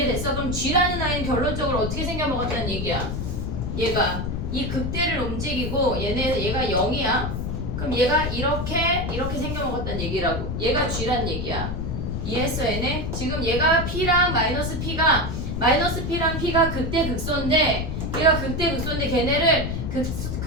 그럼 G라는 아이는 결론적으로 어떻게 생겨먹었다는 얘기야? 얘가 이 극대를 움직이고 얘가 0이야. 그럼 얘가 이렇게 생겨먹었다는 얘기라고. 얘가 G란 얘기야. 이해했어 얘네? 지금 얘가 P랑 마이너스 P가 마이너스 P랑 P가 극대 극소인데 얘가 극대 극소인데 걔네를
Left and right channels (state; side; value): noise; left; rumble, 3 dB below the sound